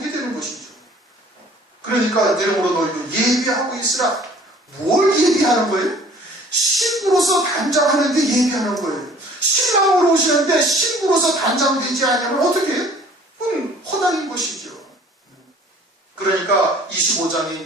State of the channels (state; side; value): normal; both; correlation 0.52